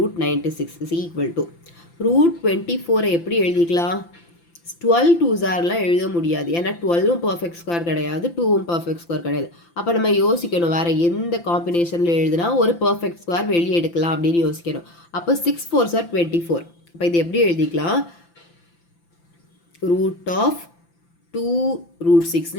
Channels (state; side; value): late; right; 5.9 ms